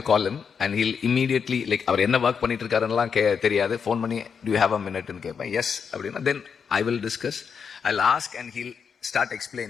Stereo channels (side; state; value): right; quieter; 6.5 dB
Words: call him and he'll immediately, like, அவர் என்ன ஒர்க் பண்ணிட்டு இருக்காருன்னெல்லாம் தெரியாது, ஃபோன் பண்ணி do you have a minute ன்னு கேட்பேன். எஸ் அப்படின்னா then I will discuss, I'll ask and he'll start